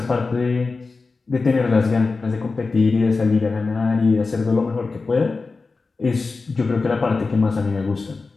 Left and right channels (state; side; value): quieter; right; 4.0 dB